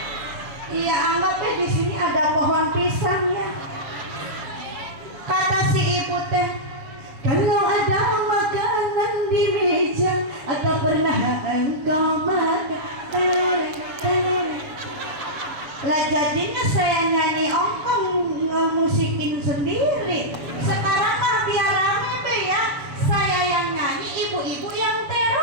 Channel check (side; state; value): left; late; 7.3 ms